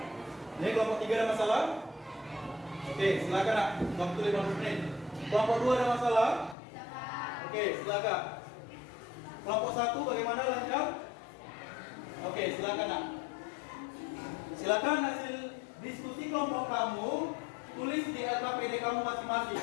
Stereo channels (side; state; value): right; drops out; at 6.6 s